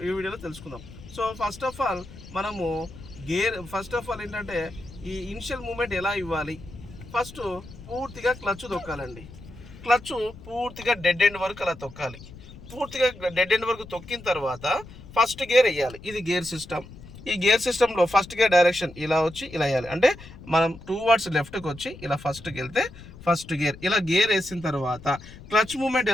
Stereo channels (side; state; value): left; noise; rumble, 17 dB below the sound